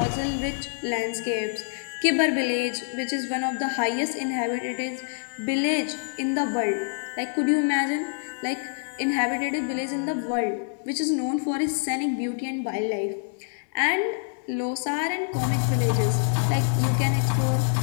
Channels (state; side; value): silent; right; digital silence